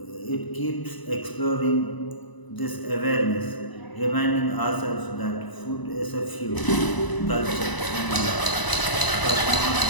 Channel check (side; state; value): right; late; 1.0 ms